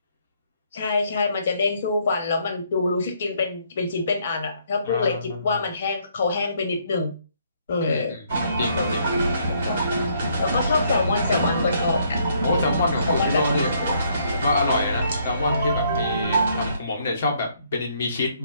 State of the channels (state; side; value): inverted; both; correlation -0.69